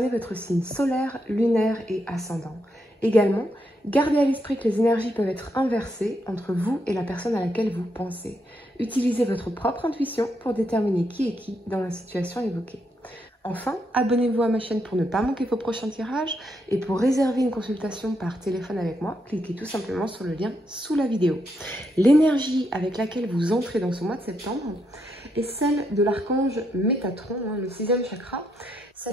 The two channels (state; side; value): normal; both; correlation 0.79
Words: votre signe solaire, lunaire et ascendant. Également, gardez à l'esprit que les énergies peuvent être inversées entre vous et la personne à laquelle vous pensez. Utilisez votre propre intuition pour déterminer qui est qui dans la situation évoquée. Enfin, abonnez-vous à ma chaîne pour ne pas manquer vos prochains tirages et pour réserver une consultation par téléphone avec moi, cliquez tout simplement sur le lien sous la vidéo. L'énergie avec laquelle vous entrez dans ce mois de septembre est celle de l'archange Métatron, le 6e chakra.